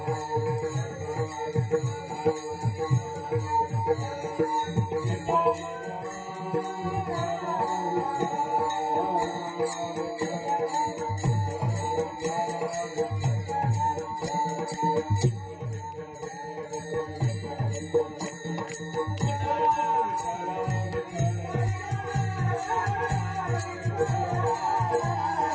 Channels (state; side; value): identical; both; correlation 1.00